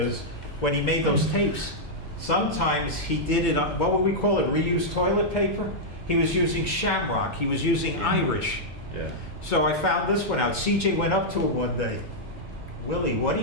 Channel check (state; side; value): normal; both; correlation -0.06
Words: when he made those tapes, sometimes he did it on, what would we call it, reused toilet paper? He was using shamrock, he was using Irish. Yeah. So I found this one out. CJ went up to him one day. Willie, what are